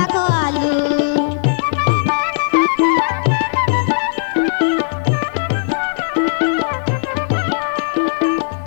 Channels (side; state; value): right; silent; digital silence